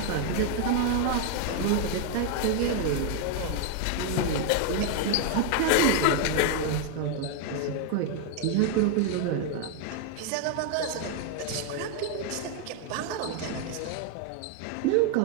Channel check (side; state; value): both; different; correlation 0.00